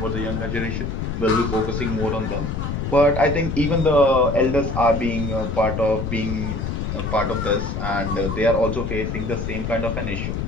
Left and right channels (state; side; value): noise; left; rumble, 3 dB below the sound